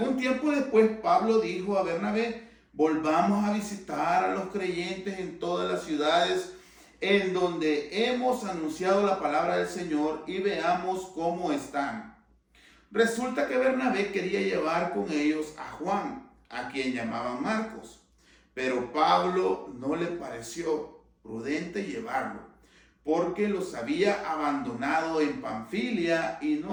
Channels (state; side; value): identical; both; correlation 1.00